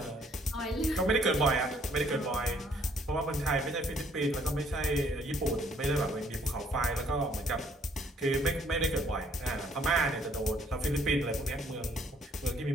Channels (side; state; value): both; normal; correlation 0.64